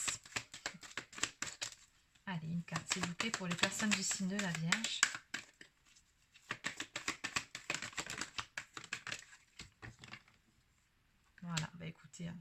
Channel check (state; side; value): identical; both; correlation 1.00